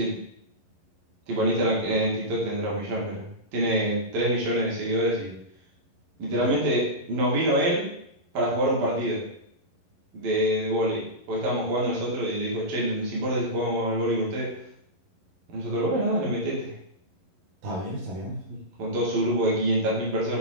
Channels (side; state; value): left; late; 11 ms